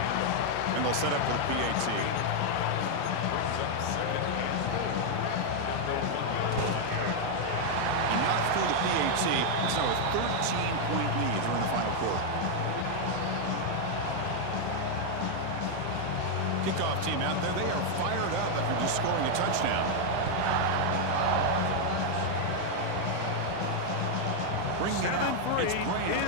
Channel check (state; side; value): different; both; correlation 0.00